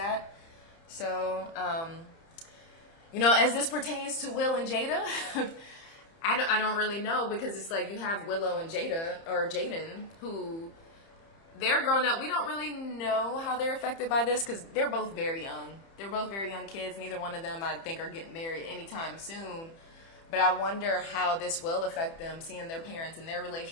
So, as this pertains to Will and Jada, I don't really know, because it's like you have Willow and Jada, or Jaden, who they're grown up. We don't really know how they're affected by this because they're both very young. They're both very young kids. Neither one of them, I think, are getting married anytime soon. But I wonder how this will affect them, seeing their parents and their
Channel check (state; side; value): late; right; 30 ms